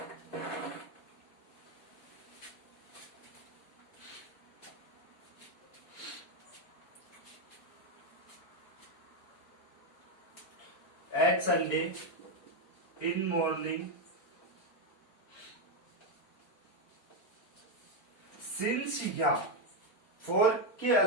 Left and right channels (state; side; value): late; right; 4.4 ms